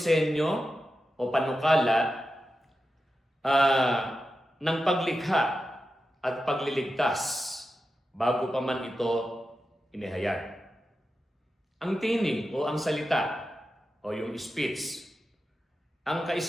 o panukala ng paglikha at pagliligtas bago pa man ito inihayag. Ang tinig o ang salita o yung speech, ang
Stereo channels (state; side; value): normal; both; correlation 0.91